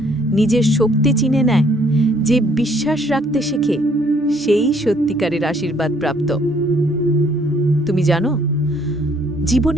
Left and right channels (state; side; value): normal; both; correlation 0.64